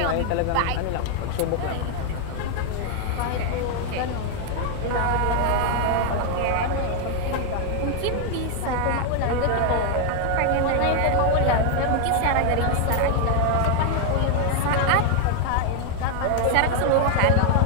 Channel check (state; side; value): different; both; correlation 0.00